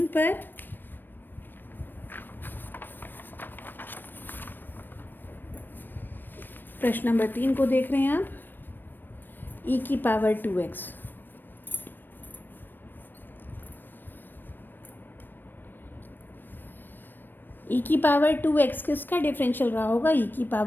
पर। प्रश्न नंबर 3 को देख रहे हैं आप, e की पावर 2x। e की पावर 2x किसका डिफरेंशियल रहा होगा, e की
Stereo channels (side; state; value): right; late; 0.093 ms